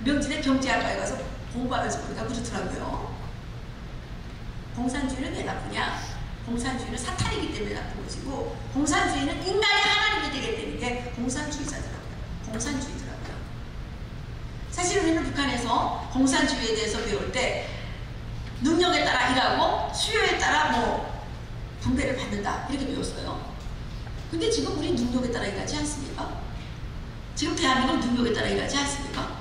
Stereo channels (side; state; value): both; identical; correlation 1.00